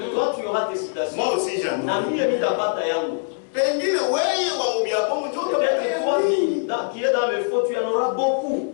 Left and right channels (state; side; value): silent; right; digital silence